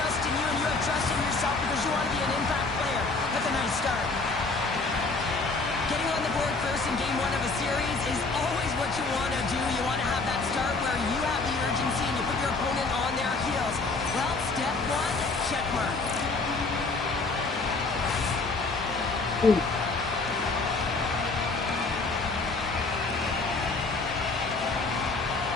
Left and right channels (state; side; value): quieter; right; 3.8 dB